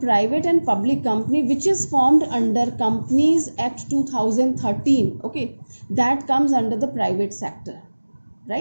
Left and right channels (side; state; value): both; inverted; correlation -1.00